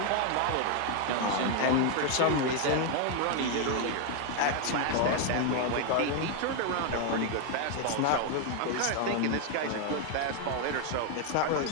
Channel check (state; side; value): different; both; correlation 0.01